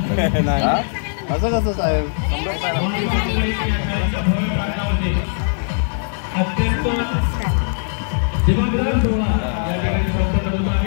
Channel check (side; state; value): right; silent; 66 dB below the other